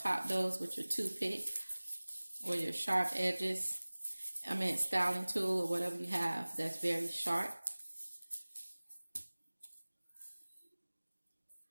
those with your toothpick or your sharp edges. I mean styling tool or whatever you have that's very sharp.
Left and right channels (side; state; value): both; inverted; correlation -1.00